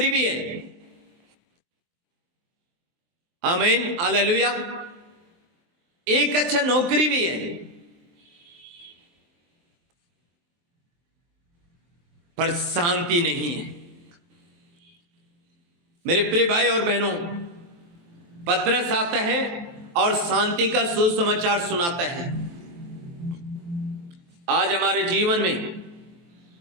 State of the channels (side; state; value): left; late; 23 ms